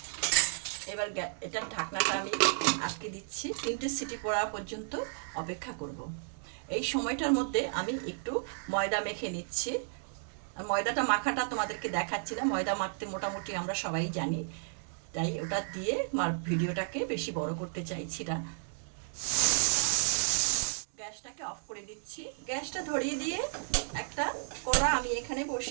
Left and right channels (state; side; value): silent; left; digital silence